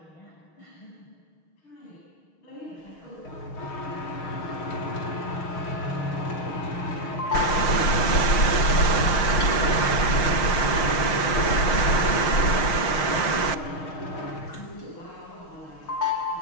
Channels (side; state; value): right; late; 6.4 ms